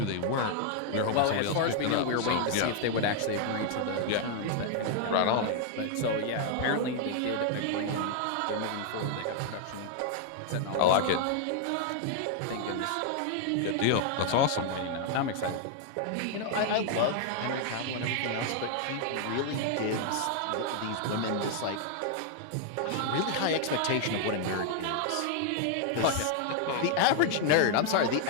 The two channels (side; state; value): both; different; correlation 0.00